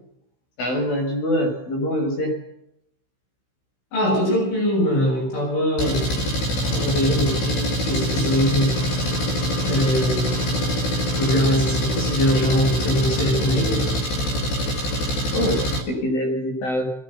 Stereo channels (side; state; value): right; late; 16 ms